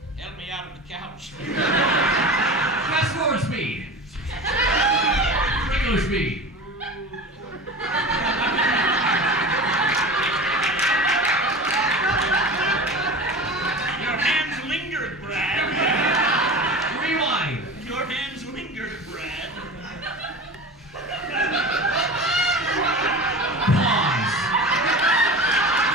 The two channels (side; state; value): both; normal; correlation 0.32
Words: out of the couch. Fast forward speed. Regular speed. Your hands lingered, Brad. Rewind. Your hands lingered, Brad. Pause.